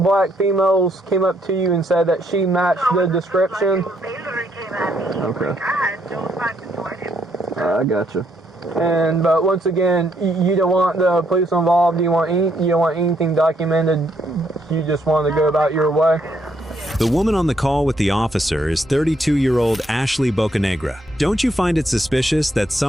females came up to you and said that she matched the description. They literally came at me. Okay. Like, I had no time to do anything. I gotcha. But once again, you don't want the police involved. You don't want anything documented. You just want to go about your way. The woman on the call with the officer is 32-year-old Ashley Bocanegra. Don't you find it suspicious that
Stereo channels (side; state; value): both; normal; correlation 0.73